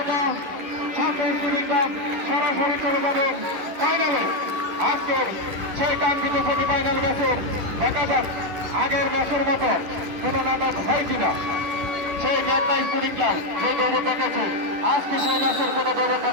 সরাসরি চলে যাবেন ফাইনালে। আজকের সেই কাঙ্ক্ষিত সেমিফাইনাল ম্যাচের দেখা যাক আগের ম্যাচের মতো কোন নাটক হয় কিনা। সেই মেঘনা স্পোর্টিং ক্লাব যে দৌড় দেখেছে, আজকে সেই ম্যাচের কোন দৌড়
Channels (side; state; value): left; late; 11 ms